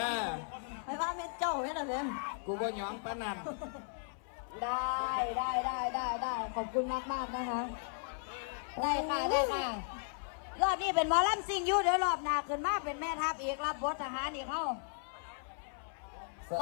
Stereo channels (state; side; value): silent; right; 54 dB below the other